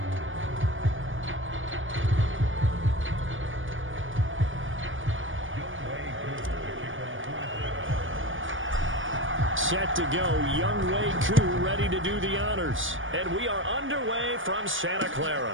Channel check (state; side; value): late; left; 0.57 ms